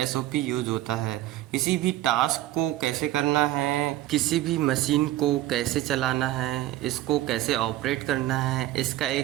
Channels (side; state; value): left; quieter; 14.7 dB